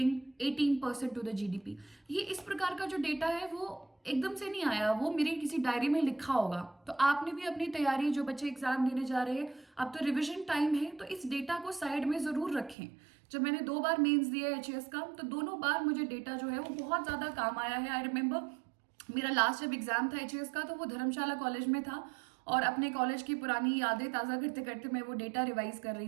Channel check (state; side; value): drops out; left; at 12.8 s